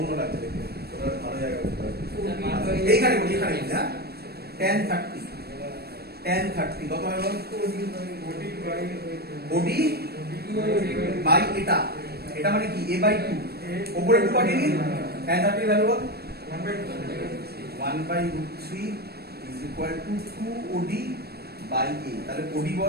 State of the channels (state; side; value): late; left; 0.46 ms